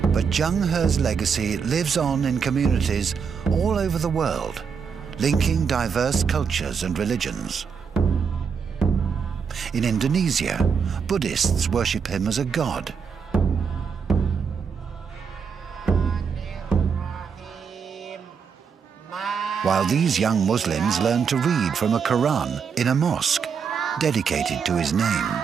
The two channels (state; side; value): quieter; left; 6.4 dB